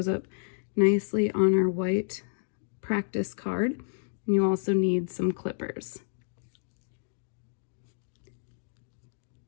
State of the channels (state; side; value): silent; right; digital silence